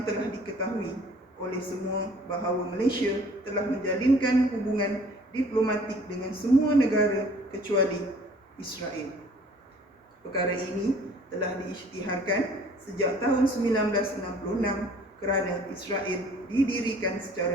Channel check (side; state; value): both; normal; correlation 0.53